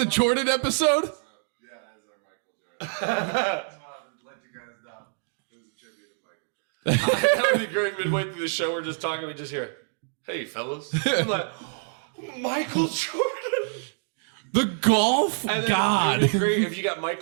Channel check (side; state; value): left; silent; digital silence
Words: Jordan episode? Yeah, that is our Michael Jordan. Just wanted to let you guys know. It was a tribute to Michael Jordan. That would be great. Midway through the show, we're just talking. We just hear, "Hey, fellas." I'm like, Michael Jordan. The golf And then god. it would be great if you got